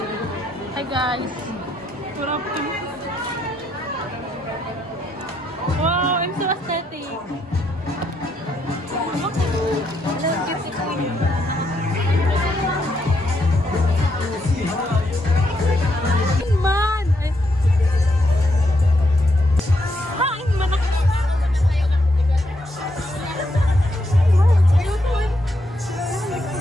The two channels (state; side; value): normal; both; correlation 0.77